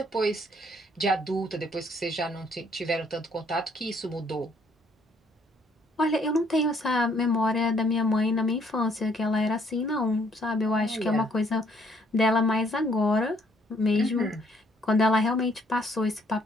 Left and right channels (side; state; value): both; normal; correlation 0.66